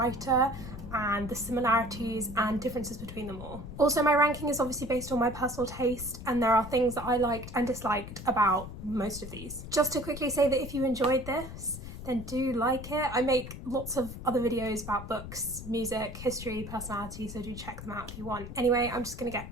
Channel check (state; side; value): noise; left; rumble, 11 dB below the sound